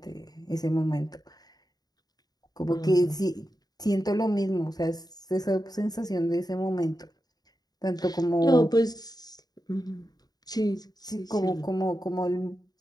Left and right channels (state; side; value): late; right; 0.19 ms